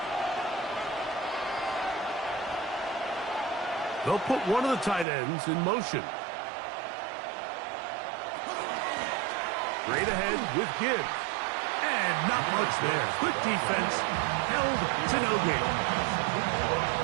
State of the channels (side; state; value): left; drops out; at 5.1 s